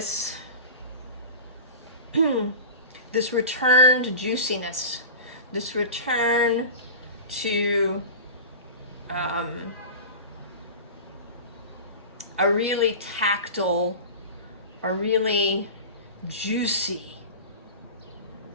this return to juiciness, this return to a really tactile, a really juicy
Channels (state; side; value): inverted; both; correlation -0.33